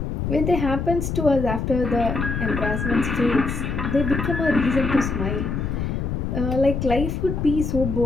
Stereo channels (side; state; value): left; noise; rumble, 2 dB below the sound